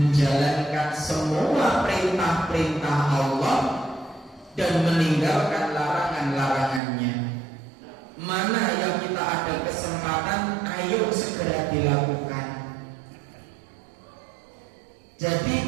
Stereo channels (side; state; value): left; drops out; at 6.8 s